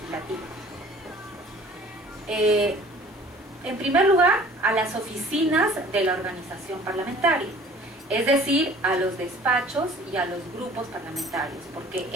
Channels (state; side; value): normal; both; correlation 0.49